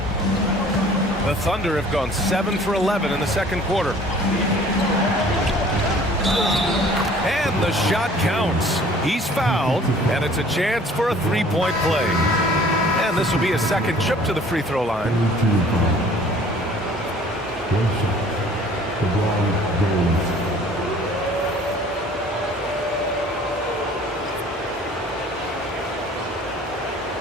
The Thunder have gone 7 for 11 in the second quarter. And the shot counts. He's fouled, and it's a chance for a 3-point play. And this will be a second trip to the free throw line.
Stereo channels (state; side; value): normal; both; correlation 0.52